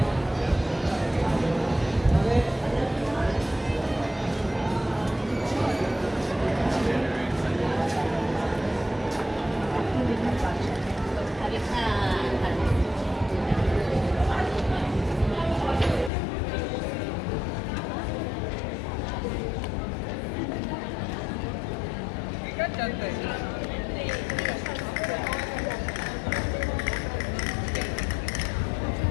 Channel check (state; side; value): drops out; right; at 16.1 s